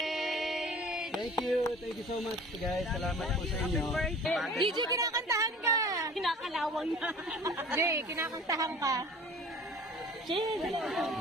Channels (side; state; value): both; normal; correlation 0.44